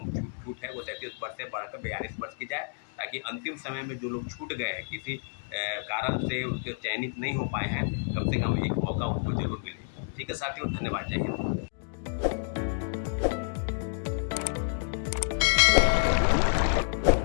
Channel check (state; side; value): silent; right; digital silence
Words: छूट है वो 37 वर्ष से बढ़कर 42 वर्ष की जाए, ताकि अंतिम समय में जो लोग छूट गए हैं किसी कारण से उनके चयनित नहीं हो पाए हैं, कम से कम एक मौका उनको जरूर मिले। ठीक है साथियों, धन्यवाद, जय हिंद।